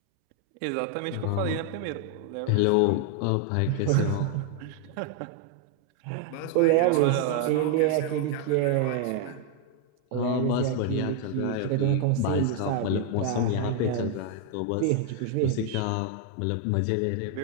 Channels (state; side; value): different; both; correlation 0.00